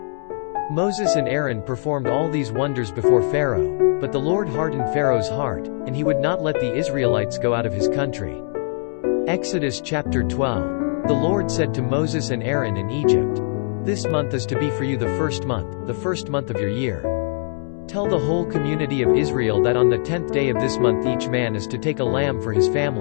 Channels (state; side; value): silent; right; 64 dB below the other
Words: Moses and Aaron performed all these wonders before Pharaoh, but the Lord hardened Pharaoh's heart, and he would not let the Israelites go out of his country. Exodus chapter 12. The Lord said to Moses and Aaron in Egypt, "This month is to be for you the first month of your year. Tell the whole community of Israel that on the 10th day of this month each man is to take a lamb for his